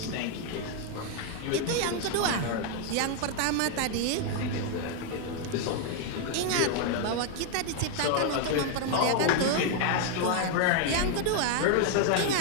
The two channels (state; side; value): different; both; correlation 0.00